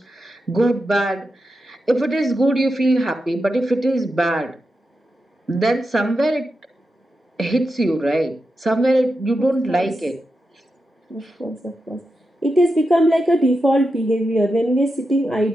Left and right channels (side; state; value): both; normal; correlation 0.88